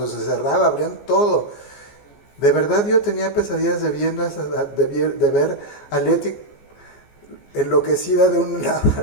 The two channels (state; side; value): late; right; 14 ms